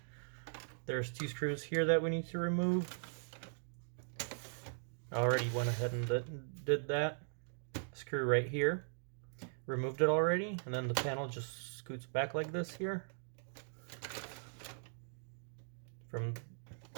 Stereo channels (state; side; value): silent; left; digital silence